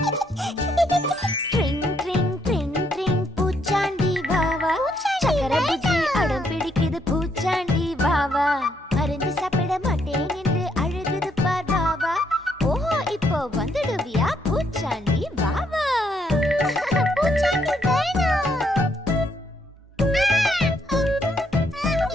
மருந்து சாப்பிட மாட்டேன் என்று அழுகுது பார் வாவா. ஓஹோ இப்போ வந்துடுவியா பூச்சாண்டி வாவா. பூச்சாண்டி வேணும்.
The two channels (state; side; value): normal; both; correlation 0.73